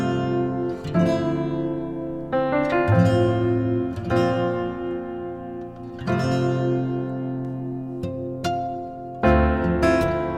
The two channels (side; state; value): both; identical; correlation 1.00